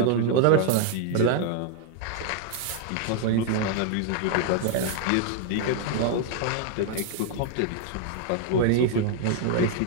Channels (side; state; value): both; different; correlation 0.00